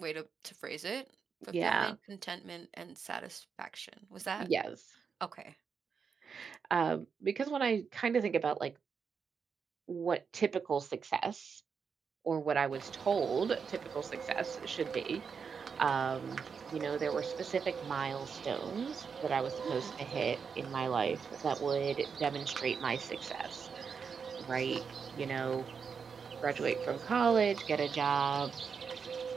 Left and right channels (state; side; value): quieter; left; 6.0 dB